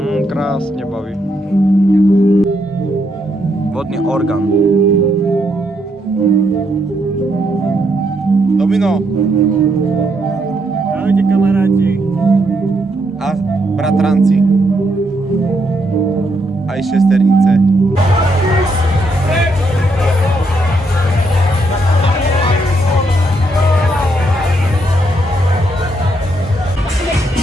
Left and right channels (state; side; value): normal; both; correlation 0.77